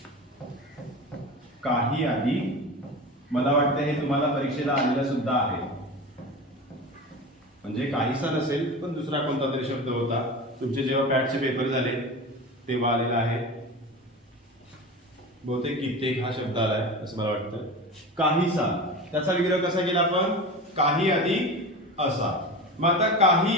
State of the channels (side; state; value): both; normal; correlation 0.29